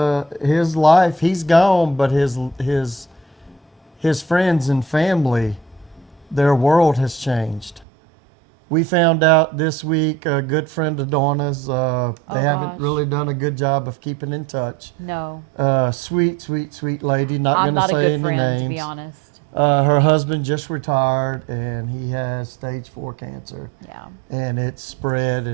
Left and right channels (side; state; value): left; drops out; at 7.9 s